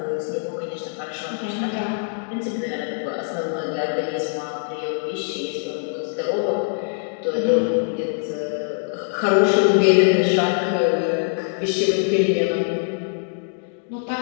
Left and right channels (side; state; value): right; silent; 59 dB below the other